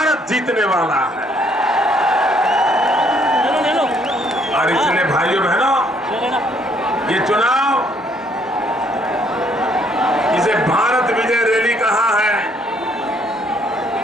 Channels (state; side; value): normal; both; correlation 0.66